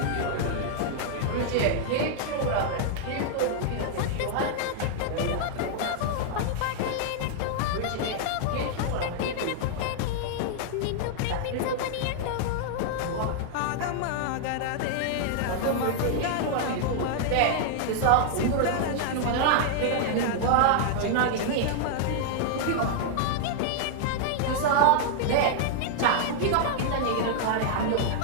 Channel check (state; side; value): different; both; correlation -0.01